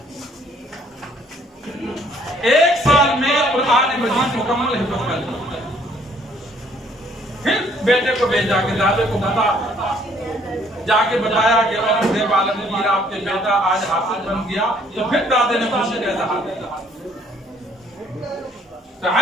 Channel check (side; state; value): both; normal; correlation 0.62